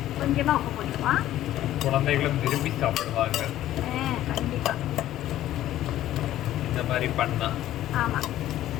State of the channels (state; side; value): quieter; right; 13.4 dB